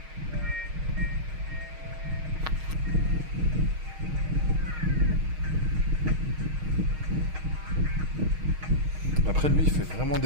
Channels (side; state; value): left; late; 6.4 ms